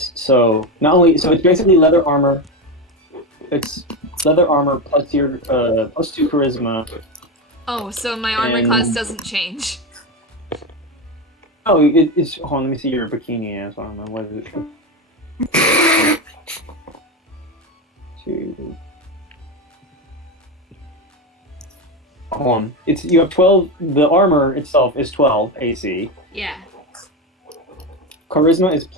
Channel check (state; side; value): normal; both; correlation 0.16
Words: So not only it's basically leather armor. It's leather armor plus your plus 2 charisma. Oh, so my armor class doesn't change. Oh, it's hold on, let me see your bikini as well. What is it? 2. Hold on. You have 12. The armor itself is 12 AC. Yeah. Charisma is